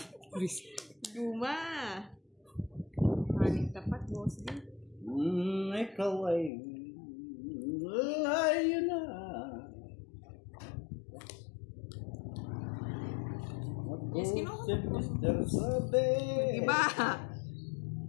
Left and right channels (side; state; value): right; drops out; at 6.5 s